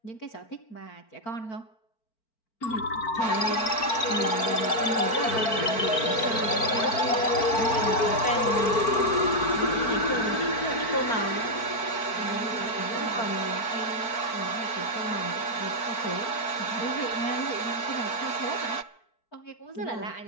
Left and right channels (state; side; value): late; right; 4.5 ms